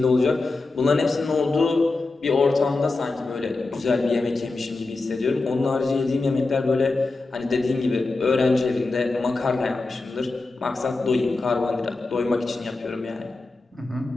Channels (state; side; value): quieter; right; 3.4 dB